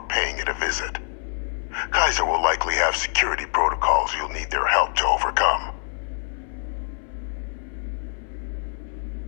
paying it a visit. Kaiser will likely have security protocols you'll need their help to overcome.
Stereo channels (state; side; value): silent; right; 62 dB below the other